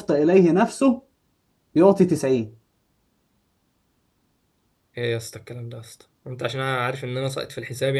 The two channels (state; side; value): identical; both; correlation 1.00